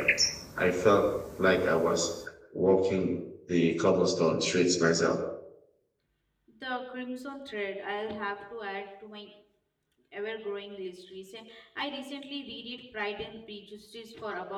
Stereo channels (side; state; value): both; identical; correlation 1.00